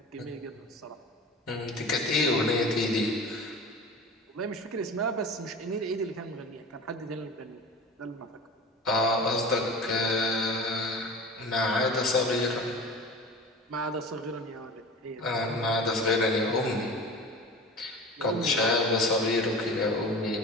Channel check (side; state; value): both; normal; correlation 0.35